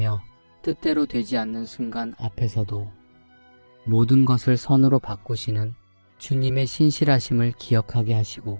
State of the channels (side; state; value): both; inverted; correlation -1.00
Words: 뜻대로 되지 않는 순간 앞에서도 모든 것을 선으로 바꾸시는 주님의 신실하심을 기억하게 하시고